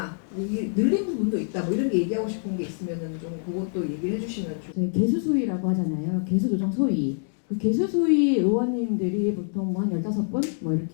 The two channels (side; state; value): right; silent; digital silence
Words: 이게 늘린 부분도 있다. 뭐 이런 게 얘기하고 싶은 게 있으면은 좀 그것도 얘기를 해주시면 좋겠습니다. 저희 개수수위라고 하잖아요. 개수조정 소위. 그 개수수위 의원님들이 보통 뭐 한 15분 뭐